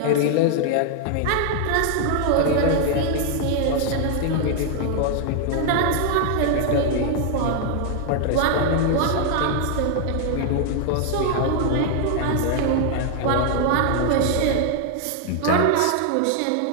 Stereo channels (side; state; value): both; different; correlation 0.00